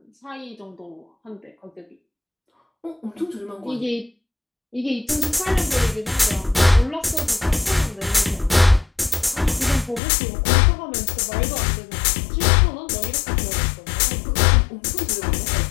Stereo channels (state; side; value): drops out; right; at 10.0 s